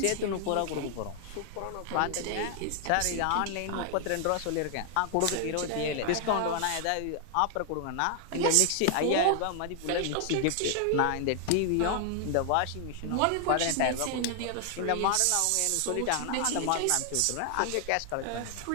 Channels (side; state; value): both; different; correlation 0.00